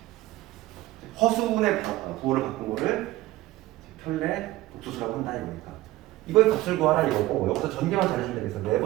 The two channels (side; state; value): left; quieter; 17.1 dB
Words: 허수분의 부호를 바꾼 거를 편례 복수수라고 한다 이거니까. 이거의 값을 구하라 이거고 여기서 전개만 잘해주면 되겠어.